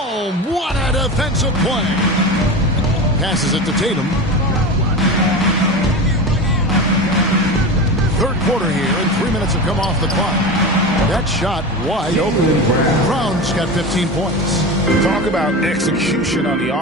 What a defensive play. Passes it to Tatum. Third quarter here, and 3 minutes have come off the clock. That shot wide open. Brown's got 15 points. Talk about execution on the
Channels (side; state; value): both; normal; correlation 0.26